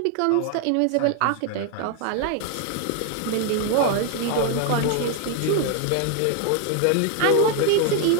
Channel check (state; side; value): different; both; correlation 0.00